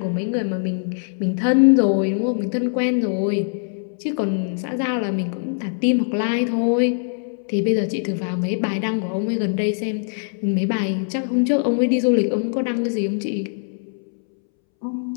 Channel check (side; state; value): right; silent; 64 dB below the other